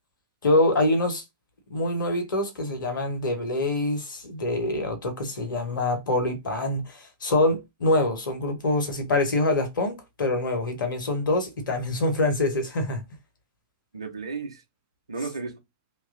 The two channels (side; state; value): both; inverted; correlation -0.37